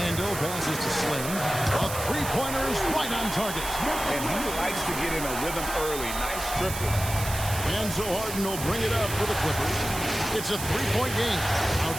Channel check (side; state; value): right; noise; hiss, 7 dB below the sound